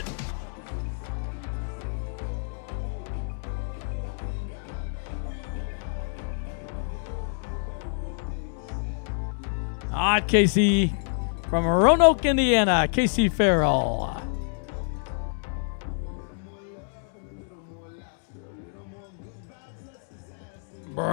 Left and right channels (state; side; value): silent; right; 59 dB below the other